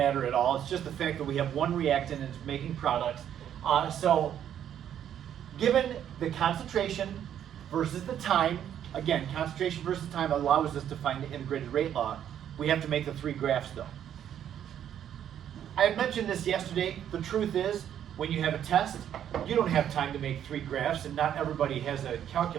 at all. It's just the fact that we have one reactant and it's making products. So given the concentration versus the time, again, concentration versus time allows us to find the integrated rate law. We have to make the 3 graphs though. I had mentioned this yesterday. The truth is, when you have a test, you don't have time to make 3 graphs, and not everybody has a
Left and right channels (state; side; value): quieter; left; 9.9 dB